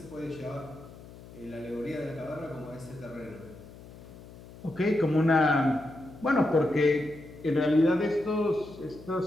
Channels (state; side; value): noise; left; hum, 18 dB below the sound